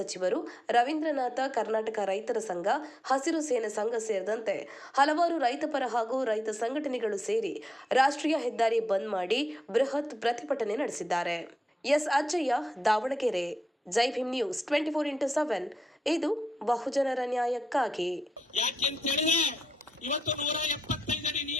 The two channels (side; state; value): both; normal; correlation 0.86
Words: ರವೀಂದ್ರನಾಥ, ಕರ್ನಾಟಕ ರೈತರ ಸಂಘ, ಹಸಿರು ಸೇನೆ ಸಂಘ ಸೇರಿದಂತೆ ಹಲವಾರು ರೈತಪರ ಹಾಗೂ ರೈತ ಸಂಘಟನೆಗಳು ಸೇರಿ ರಾಷ್ಟ್ರೀಯ ಹೆದ್ದಾರಿ ಬಂದ್ ಮಾಡಿ ಬೃಹತ್ ಪ್ರತಿಭಟನೆ ನಡೆಸಿದ್ದಾರೆ. ಎಸ್ ಅಜ್ಜಯ್ಯ, ದಾವಣಗೆರೆ. ಜೈ ಭೀಮ್ ನ್ಯೂಸ್ 24x7 ಇದು ಬಹುಜನರ ನ್ಯಾಯಕ್ಕಾಗಿ. ಯಾಕೆಂತೇಳಿದ್ರೆ ಇವತ್ತು 175 ಅಡಿ